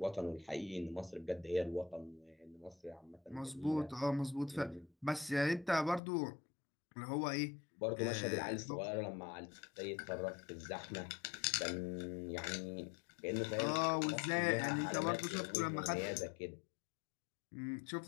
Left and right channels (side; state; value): right; drops out; at 6.0 s